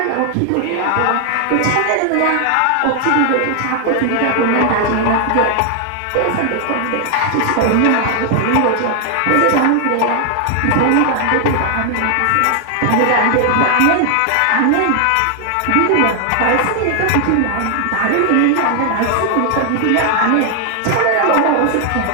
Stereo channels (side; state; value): both; different; correlation 0.00